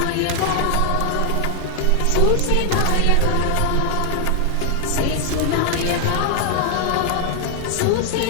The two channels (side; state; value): both; different; correlation 0.00